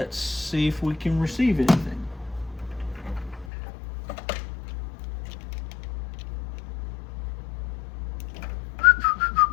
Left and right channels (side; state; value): right; drops out; at 3.5 s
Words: see if we can receive anything.